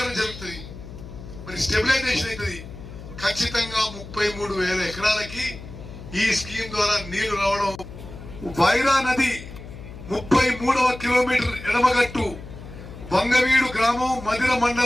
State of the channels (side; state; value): left; noise; hum, 14 dB below the sound